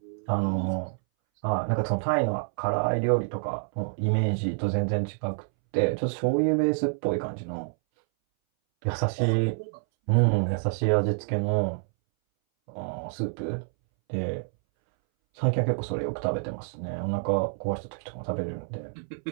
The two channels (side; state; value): left; silent; 60 dB below the other